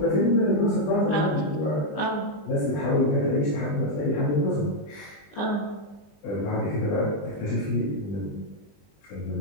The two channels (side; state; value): right; late; 20 ms